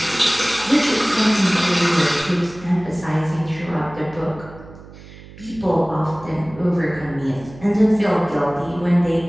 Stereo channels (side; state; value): right; noise; hum, 19 dB below the sound